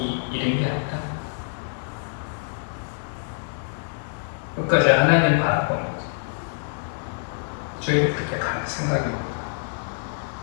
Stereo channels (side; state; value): right; silent; digital silence